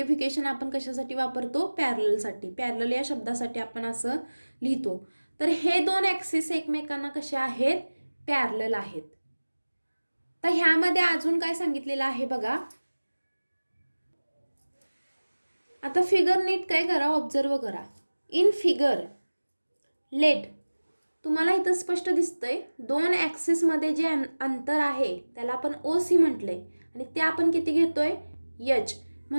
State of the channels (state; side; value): inverted; both; correlation -1.00